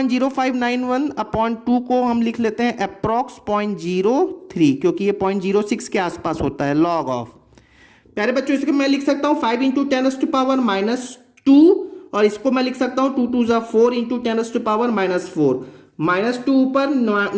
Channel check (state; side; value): identical; both; correlation 1.00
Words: अपॉन 2 को हम लिख लेते हैं अप्रॉक्स 0.03, क्योंकि ये 0.06 के आसपास होता है, लॉग ऑफ। प्यारे बच्चों इसको मैं लिख सकता हूं 5 × 10⁻⁻2, और इसको मैं लिख सकता हूं 2 2 4 × 10⁻⁻4। -2 ऊपर